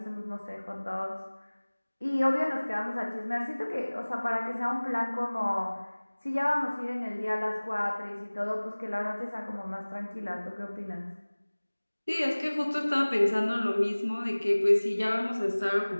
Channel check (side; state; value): both; inverted; correlation -1.00